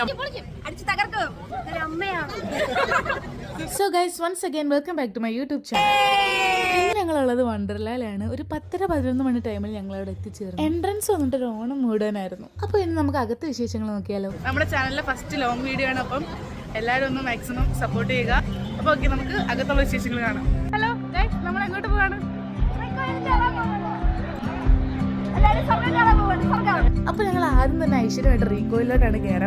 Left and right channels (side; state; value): both; identical; correlation 1.00